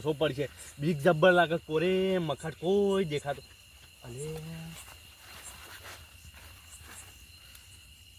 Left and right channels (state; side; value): identical; both; correlation 1.00